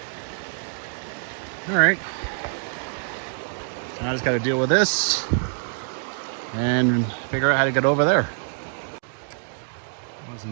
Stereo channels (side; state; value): left; silent; digital silence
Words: All right. So I just got to deal with this and figure out how to get over there.